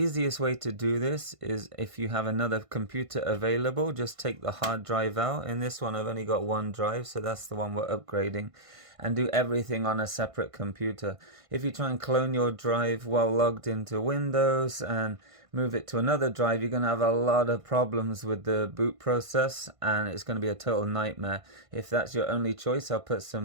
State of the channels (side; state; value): left; late; 1.5 ms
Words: way to do this is if you have another computer available, just take the hard drive out. In this one, I've only got one drive, so that's the one we're upgrading, and do everything on a separate computer. If you try and clone your drive while logged into Windows and move it to another drive, you're going to have a lot of problems with the boot process, and it's going to be a total nightmare. If that's your only choice, I'll put